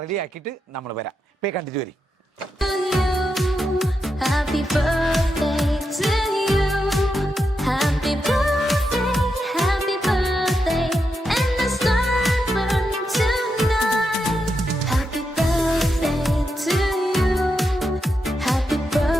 റെഡി ആക്കിയിട്ട് നമ്മൾ വരാം. പോയി കണ്ടിട്ട് വരും. Happy birthday to you. Happy birthday, happy birthday. And the stars burning tonight. Happy birthday to you. Happy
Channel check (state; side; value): normal; both; correlation 0.85